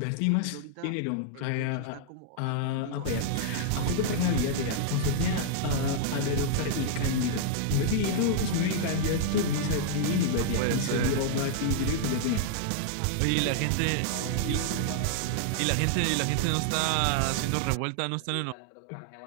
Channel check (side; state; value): both; different; correlation -0.01